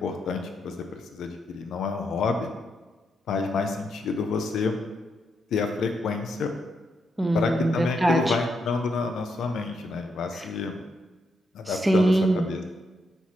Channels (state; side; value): normal; both; correlation 0.80